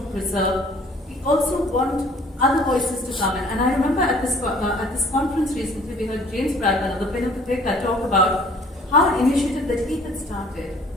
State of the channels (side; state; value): both; normal; correlation 0.54